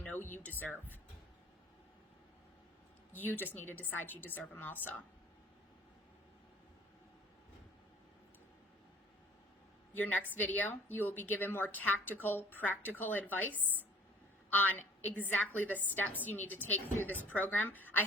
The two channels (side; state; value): both; normal; correlation 0.53